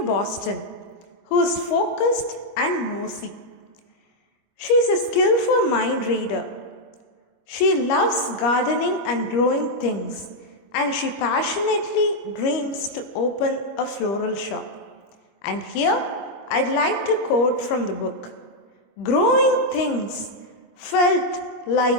Boston who is focused and nosy. She is a skillful mind reader. She loves gardening and growing things, and she passionately dreams to open a floral shop. And here, I'd like to quote from the book. Growing things felt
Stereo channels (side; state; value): right; late; 25 ms